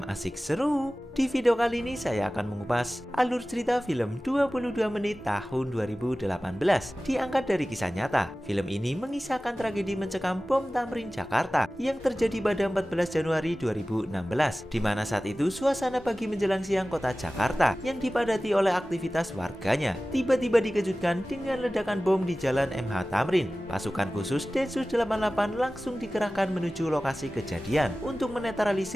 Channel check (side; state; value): both; normal; correlation 0.96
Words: asik seru. Di video kali ini saya akan mengupas alur cerita film 22 menit tahun 2018 diangkat dari kisah nyata. Film ini mengisahkan tragedi mencekam bom Tamrin Jakarta yang terjadi pada 14 Januari 2016, di mana saat itu suasana pagi menjelang siang kota Jakarta yang dipadati oleh aktivitas warganya tiba-tiba dikejutkan dengan ledakan bom di Jalan MH Tamrin. Pasukan khusus Densus 88 langsung dikerahkan menuju lokasi kejadian untuk